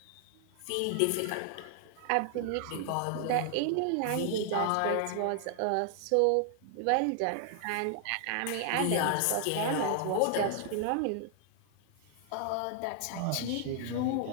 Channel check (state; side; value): different; both; correlation 0.00